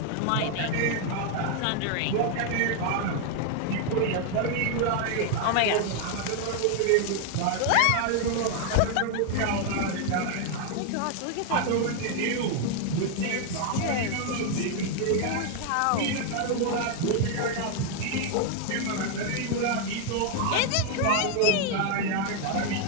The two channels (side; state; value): both; different; correlation 0.00